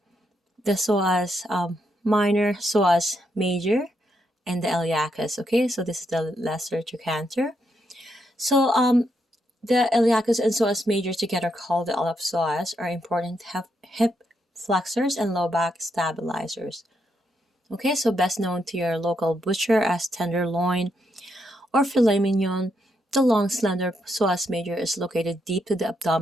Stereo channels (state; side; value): normal; both; correlation 0.79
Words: the psoas minor, psoas major, and the iliacus. Okay, so this is the lesser trochanter. So the iliacus and psoas major, together called the iliopsoas, are important hip flexors and low back stabilizers. Okay, so best known to your local butcher as tenderloin or filet mignon, the long slender psoas major is located deep to the